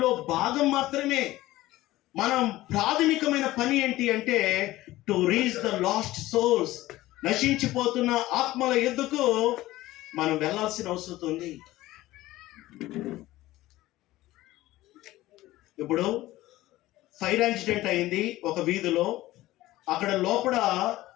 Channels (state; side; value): quieter; right; 16.8 dB